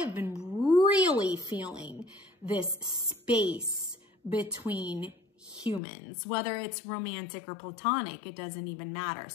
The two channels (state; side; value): drops out; right; at 5.8 s